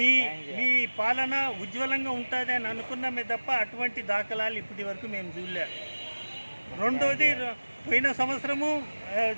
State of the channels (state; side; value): inverted; both; correlation -1.00